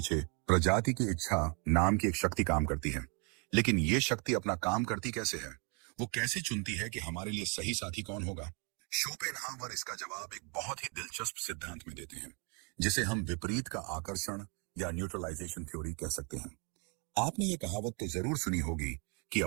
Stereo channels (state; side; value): quieter; left; 34.9 dB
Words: प्रजाति की इच्छा नाम की एक शक्ति काम करती है। लेकिन ये शक्ति अपना काम करती कैसे है? वो कैसे चुनती है कि हमारे लिए सही साथी कौन होगा? शोपेनहावर इसका जवाब एक बहुत ही दिलचस्प सिद्धांत में देते हैं, जिसे हम विपरीत का आकर्षण या न्यूट्रलाइजेशन थ्योरी कह सकते हैं। आपने ये कहावत तो जरूर सुनी होगी कि